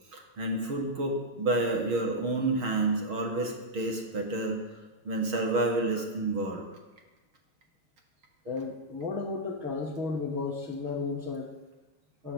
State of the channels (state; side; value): late; left; 6.4 ms